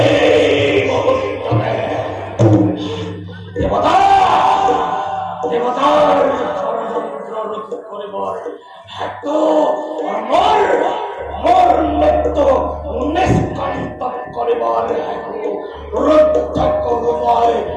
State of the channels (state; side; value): identical; both; correlation 1.00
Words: মুহূর্তে। দেবতা দেবতার ষড়যন্ত্র রোধ করিবার হেতু মোর মোর মৃত্যু নিষ্কান্ত করিবার হেতু রুদ্ধ করুমায়